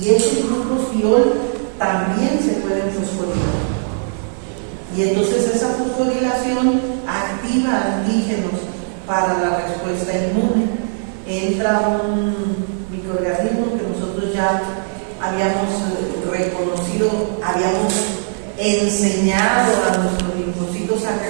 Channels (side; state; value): left; silent; 67 dB below the other